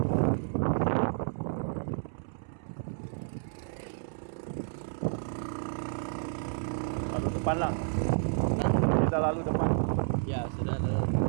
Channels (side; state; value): left; silent; 57 dB below the other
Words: Lalu depan lah. Kita lalu depan. Ya, sudah ada.